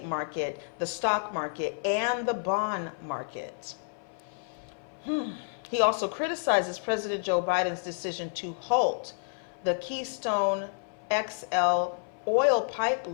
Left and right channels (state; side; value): silent; right; 55 dB below the other